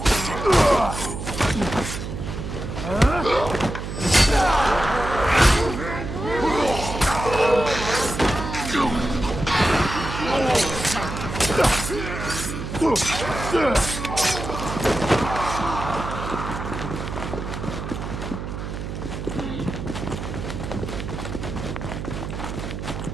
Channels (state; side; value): noise; right; hum, 6 dB below the sound